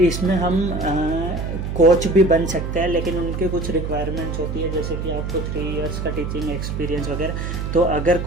हम कोच भी बन सकते हैं, लेकिन उनके कुछ रिक्वायरमेंट्स होती है, जैसे कि आपको 3 इयर्स का टीचिंग एक्सपीरियंस वगैरह। तो अगर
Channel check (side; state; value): right; noise; hum, 4 dB below the sound